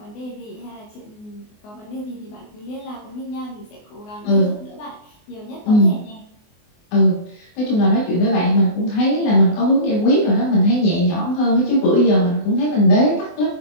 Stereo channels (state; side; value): late; right; 24 ms